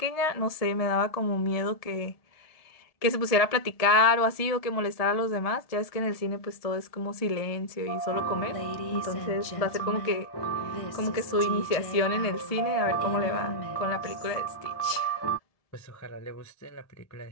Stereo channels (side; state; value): right; late; 1.7 ms